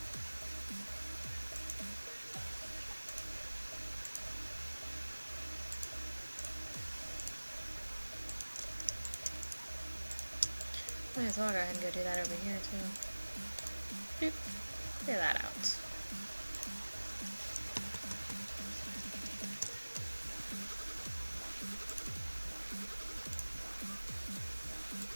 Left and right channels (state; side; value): inverted; both; correlation -1.00